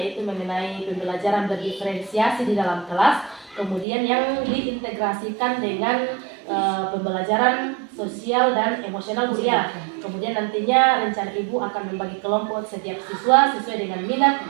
mengenai pembelajaran berdiferensiasi di dalam kelas, kemudian yang diintegrasikan dengan pembelajaran sosial dan emosional Bu ya. Kemudian nantinya rencana Ibu akan membagi kelompok setiap siswa sesuai dengan minat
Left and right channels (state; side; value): drops out; left; at 3.9 s